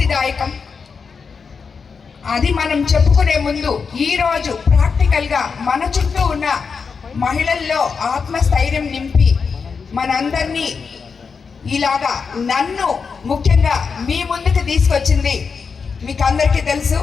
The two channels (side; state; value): right; quieter; 5.5 dB